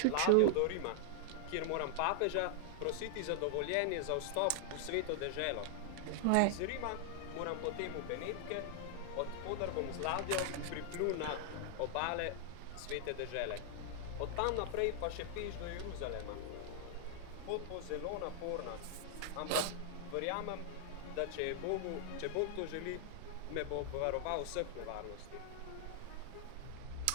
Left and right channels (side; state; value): both; different; correlation 0.00